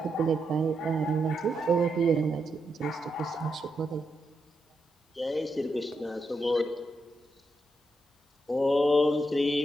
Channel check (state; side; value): normal; both; correlation 0.83